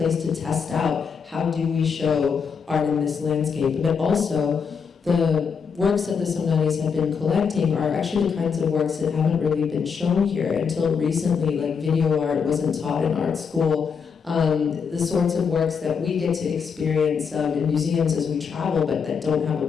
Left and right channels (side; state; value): right; quieter; 6.2 dB